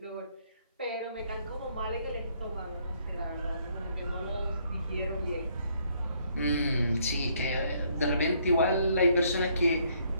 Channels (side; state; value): both; inverted; correlation -0.68